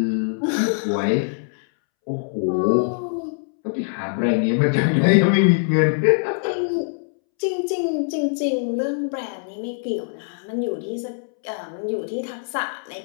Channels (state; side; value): silent; right; 64 dB below the other